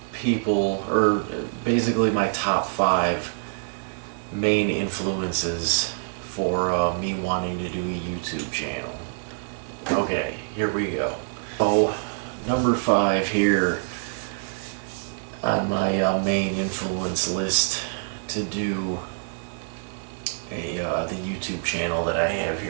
people, or basically my top five main influences for me wanting to do a YouTube channel. Okay, here we go. So, number five here on my main influence list to do the YouTube channel that I have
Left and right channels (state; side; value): silent; left; 61 dB below the other